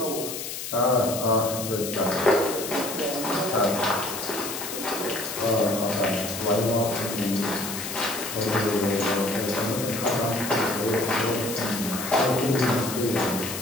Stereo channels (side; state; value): left; noise; hiss, 6 dB below the sound